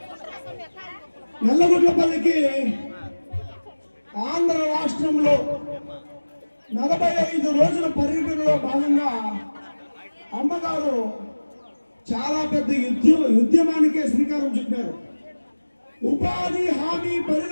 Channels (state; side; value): inverted; both; correlation -1.00